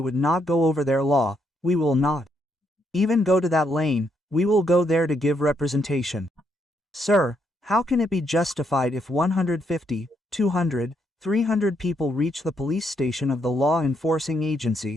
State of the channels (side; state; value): both; normal; correlation 0.76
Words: not go over their law, we will not. Even go to that lane, we will go there to give representation. Sir, how can it be justified if 150, 200, 300 people reach the police station of the law enforcing